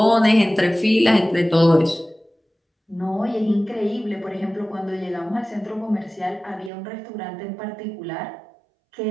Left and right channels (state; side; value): drops out; left; at 6.7 s